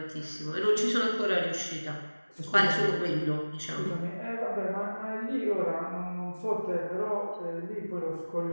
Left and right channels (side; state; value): both; inverted; correlation -1.00